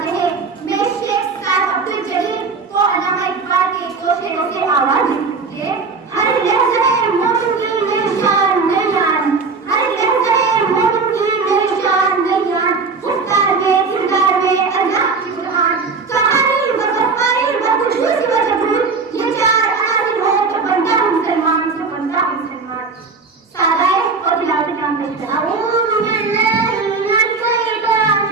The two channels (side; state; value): left; quieter; 4.5 dB